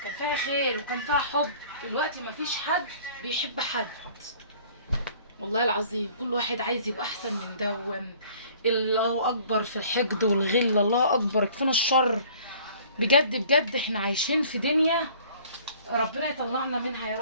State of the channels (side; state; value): both; inverted; correlation -0.52